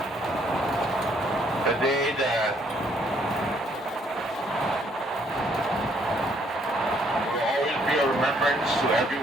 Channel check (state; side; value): normal; both; correlation 0.67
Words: The day that will always be a remembrance to